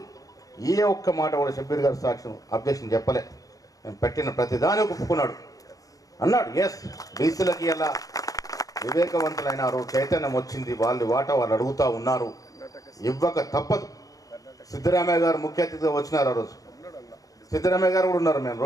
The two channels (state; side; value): late; right; 0.17 ms